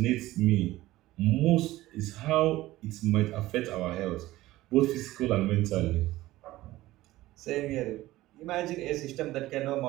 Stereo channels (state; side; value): quieter; left; 16.9 dB